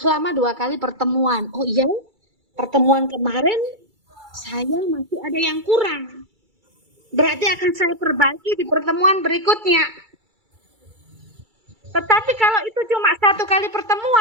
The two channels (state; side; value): late; left; 2.3 ms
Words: 2 kali pertemuan. Oh iya, pertemuan kemarin saya masih ada yang kurang. Berarti akan saya perbaiki di pertemuan berikutnya. Tetapi kalau itu cuma 1 kali